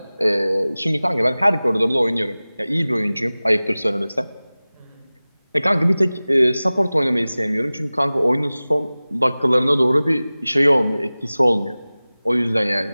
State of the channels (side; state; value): both; inverted; correlation -0.98